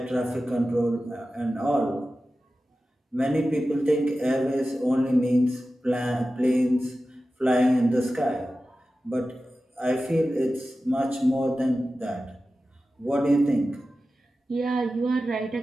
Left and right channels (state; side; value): normal; both; correlation 0.94